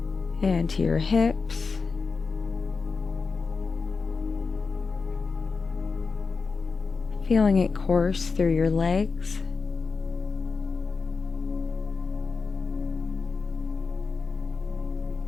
and to your hips, feeling it course through your legs,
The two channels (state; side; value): quieter; right; 4.7 dB